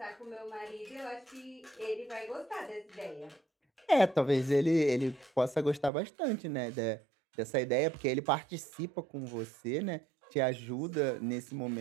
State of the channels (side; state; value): left; drops out; at 5.9 s